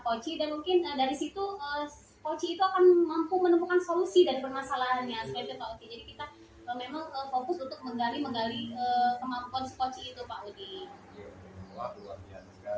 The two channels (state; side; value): identical; both; correlation 1.00